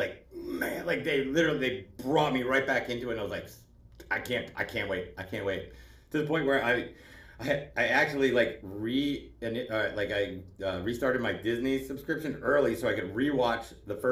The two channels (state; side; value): identical; both; correlation 1.00